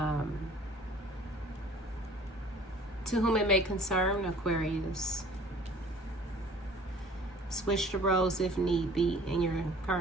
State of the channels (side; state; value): both; normal; correlation 0.50